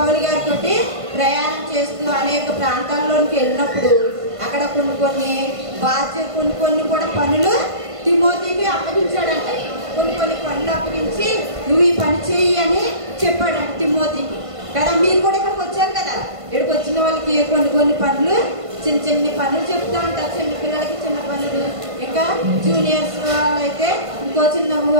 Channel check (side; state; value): left; late; 1.5 ms